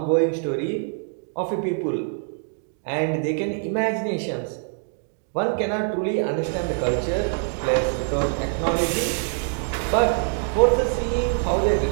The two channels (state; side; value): silent; left; 62 dB below the other